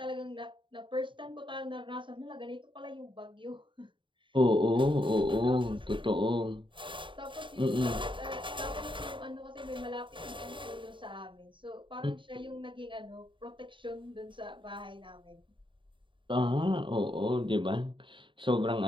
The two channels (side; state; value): left; late; 0.24 ms